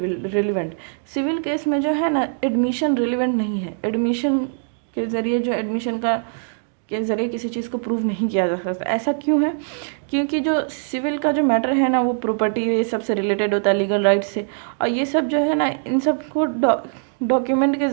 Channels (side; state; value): left; silent; digital silence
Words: Civil case में जो है ना एडमिशन रिलेवेंट नहीं है, एडमिशन के ज़रिए जो एडमिशन का के ज़रिए किसी चीज़ को प्रूव नहीं किया जा सकता। ऐसा क्यों है, क्योंकि जो सिविल का जो मैटर है ना वो प्रॉपर्टी ये सब से रिलेटेड होता है, लीगल राइट से। और ये सब जो है ना, इन सब को डॉक्यूमेंट के